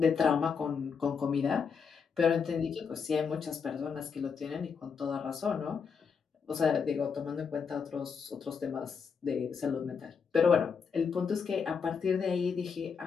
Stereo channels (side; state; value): right; quieter; 6.1 dB